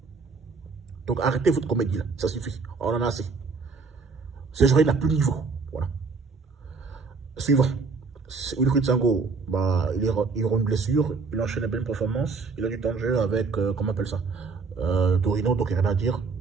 Donc arrêtez votre comédie là, ça suffit, on en a assez. Serge Aurier n'a plus de niveau, voilà. Suivant. Wilfried Sango, bah, il aura une blessure, il enchaîne une belle performance, il a du temps de jeu avec, comment on appelle ça, Torino, donc il n'y a rien à dire.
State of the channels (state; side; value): quieter; left; 4.6 dB